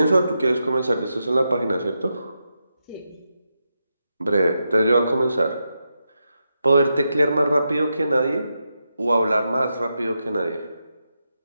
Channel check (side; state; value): both; inverted; correlation -0.86